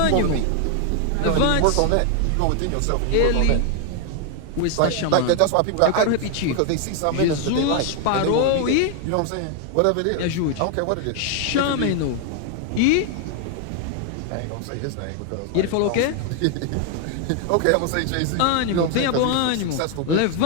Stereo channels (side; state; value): both; different; correlation 0.00